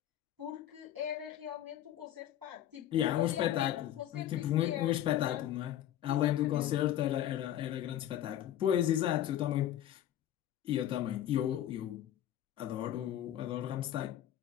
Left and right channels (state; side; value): quieter; right; 11.8 dB